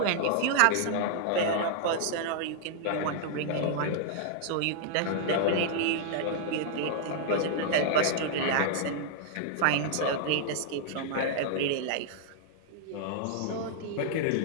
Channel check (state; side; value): different; both; correlation -0.01